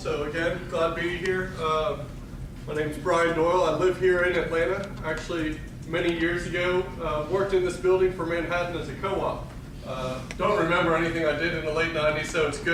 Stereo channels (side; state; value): both; identical; correlation 1.00